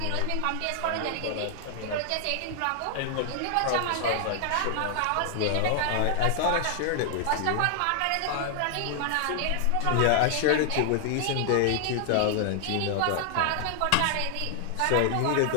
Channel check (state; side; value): different; both; correlation 0.00